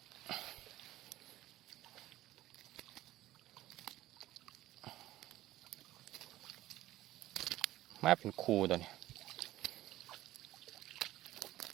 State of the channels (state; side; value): quieter; left; 15.3 dB